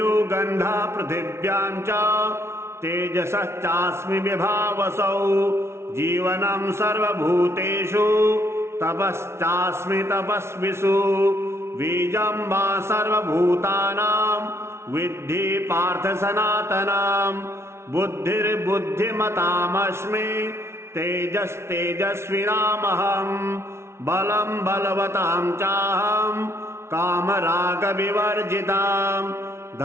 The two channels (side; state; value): left; late; 0.13 ms